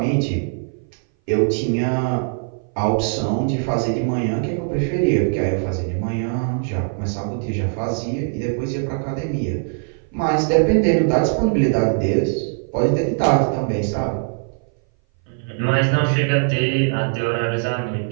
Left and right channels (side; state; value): left; silent; 59 dB below the other